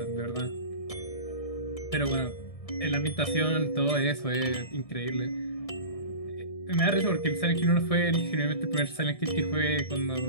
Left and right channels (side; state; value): right; late; 1.7 ms